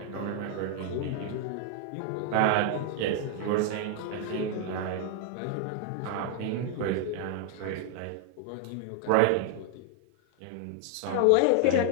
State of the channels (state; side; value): different; both; correlation 0.00